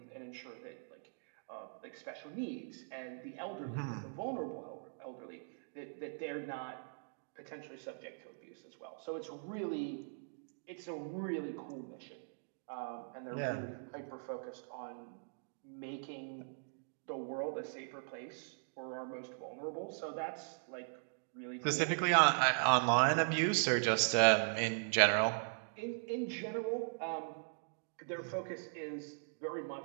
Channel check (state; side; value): silent; left; digital silence